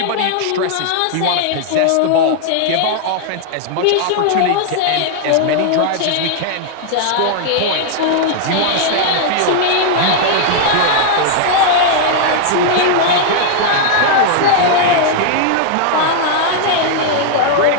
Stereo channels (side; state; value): both; different; correlation 0.00